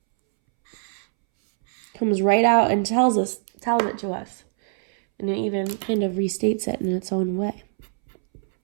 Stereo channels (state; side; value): silent; left; 63 dB below the other